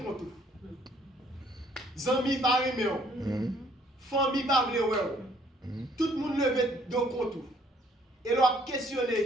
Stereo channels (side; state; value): both; normal; correlation 0.62